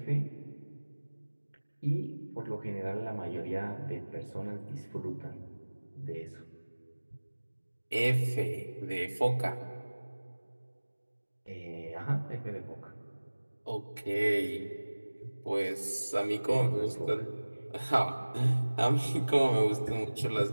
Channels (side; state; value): both; inverted; correlation -1.00